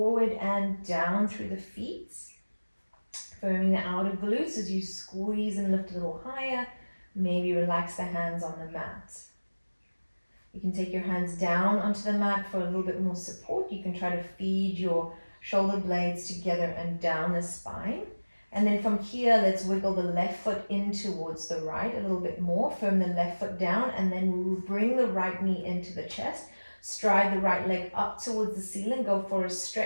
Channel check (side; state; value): both; inverted; correlation -1.00